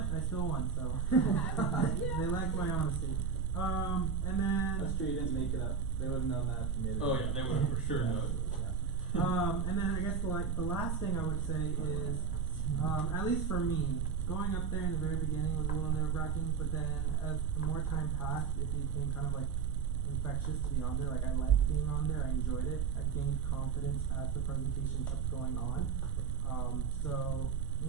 I still won. So they liked my honesty. And then that's true. You didn't make it up. They would have known that if you made it. Oh yeah, they would have for sure known. Yeah. And then I guess the last thing I would say is, at least for me, going up there in the very beginning was a little nerve-wracking, but then as more time passed, it became kind of like infectious to be on there. Like I liked being on there, I enjoyed it. I gained confidence as the presentation kept going on. So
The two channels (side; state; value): left; quieter; 5.7 dB